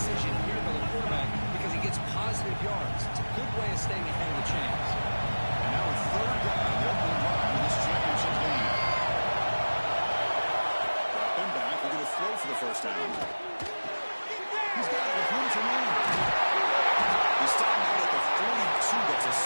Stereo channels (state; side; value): inverted; both; correlation -1.00